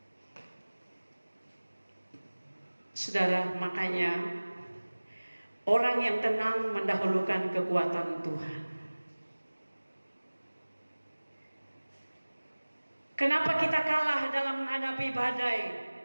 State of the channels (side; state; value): both; inverted; correlation -1.00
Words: Saudara, makanya orang yang tenang mendahulukan kekuatan Tuhan. Kenapa kita kalah dalam menghadapi badai?